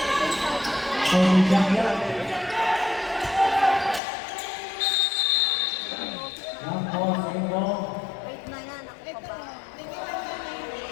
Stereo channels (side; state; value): right; drops out; at 4.0 s